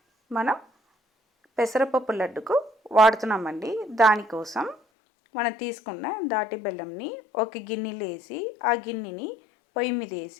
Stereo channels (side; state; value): right; drops out; at 4.8 s